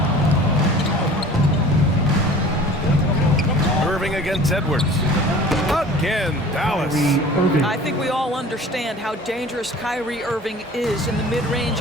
Irving against Edwards. Again, Dallas. I think we all understand how dangerous Kyrie Irving is in the mid-range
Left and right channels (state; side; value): normal; both; correlation 0.44